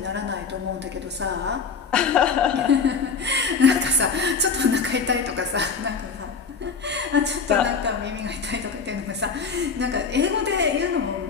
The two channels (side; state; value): right; quieter; 5.3 dB